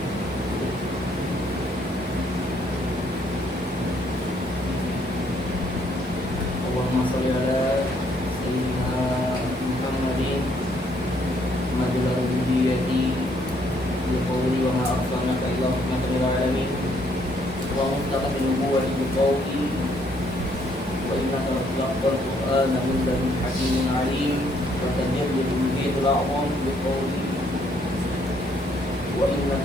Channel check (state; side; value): normal; both; correlation 0.68